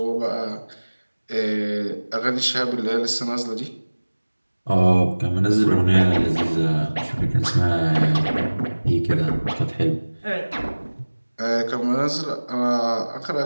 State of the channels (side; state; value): both; inverted; correlation -1.00